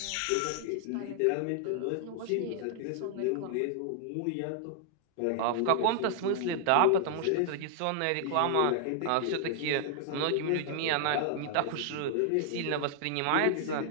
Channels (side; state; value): both; different; correlation 0.00